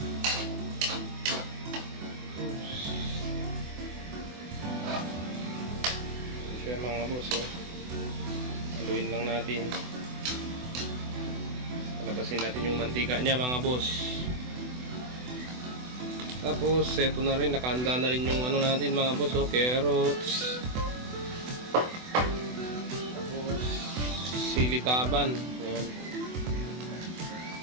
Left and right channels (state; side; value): late; left; 24 ms